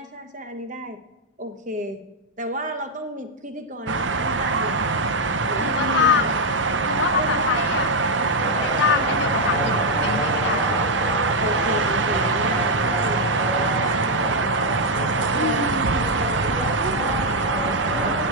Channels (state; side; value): normal; both; correlation 0.00